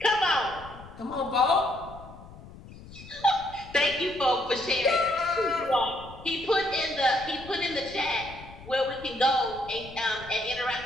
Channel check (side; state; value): left; noise; rumble, 17 dB below the sound